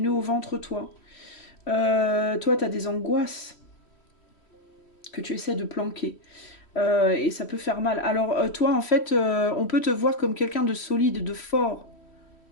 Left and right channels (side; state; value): right; late; 3.1 ms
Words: au ventre, toi. Toi, t'as des angoisses que tu essaies de planquer. Et ça peut faire mal. Alors toi, en fait, on peut te voir comme quelqu'un de solide, de fort,